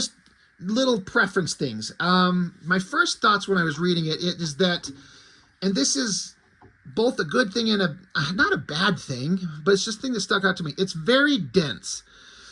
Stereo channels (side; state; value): both; identical; correlation 1.00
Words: little preference things. My first thoughts when I was reading it is that, and this is both a good thing and not a bad thing, but it's just a thing that stuck out to me. It's very dense.